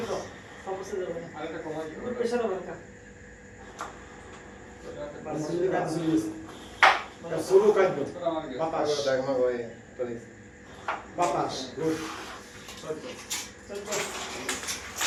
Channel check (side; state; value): both; identical; correlation 1.00